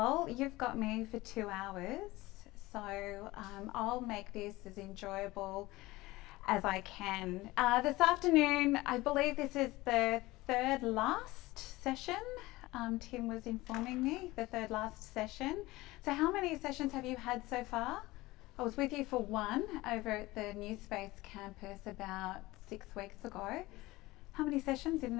you've got me for 2 hours, so I'll make this as enjoyable as I can. This afternoon, I believe this is the third last session. Tim was informing me, the third last session. So how many sessions have you had so far? I was with you for one over at the New Space campus about 6 weeks ago. How many sessions in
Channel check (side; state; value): right; quieter; 19.6 dB